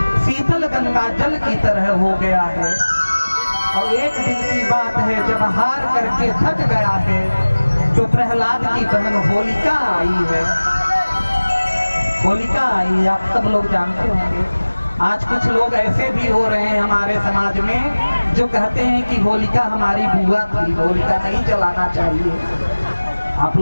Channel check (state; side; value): inverted; both; correlation -1.00